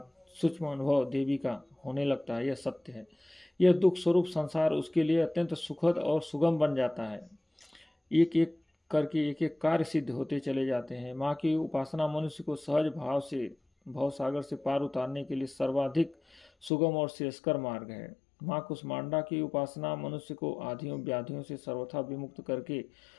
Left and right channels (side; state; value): right; drops out; at 16.7 s